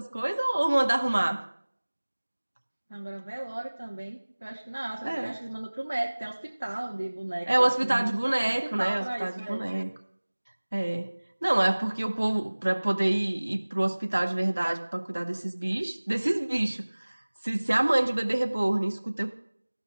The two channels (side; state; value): both; inverted; correlation -1.00